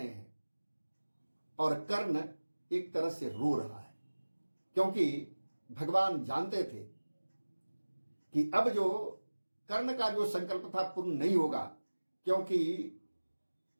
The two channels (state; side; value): inverted; both; correlation -1.00